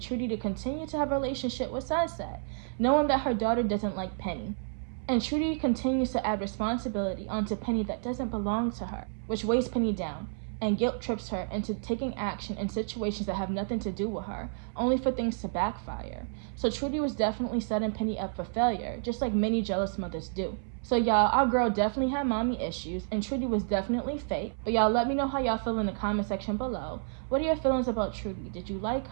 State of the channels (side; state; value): left; silent; 58 dB below the other